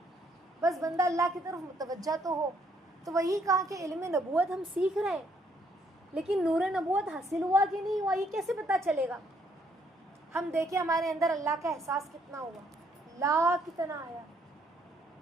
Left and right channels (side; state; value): both; normal; correlation 0.69